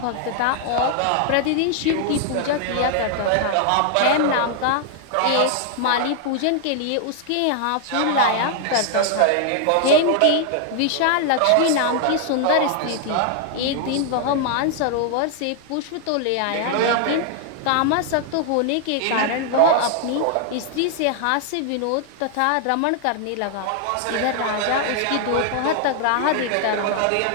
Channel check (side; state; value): both; different; correlation 0.00